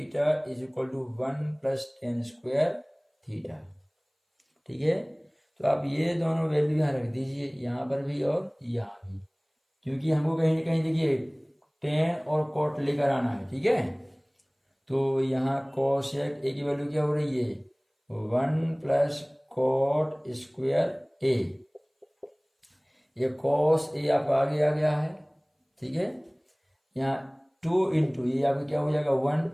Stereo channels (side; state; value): both; identical; correlation 1.00